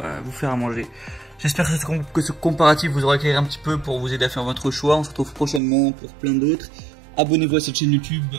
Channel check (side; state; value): left; drops out; at 5.6 s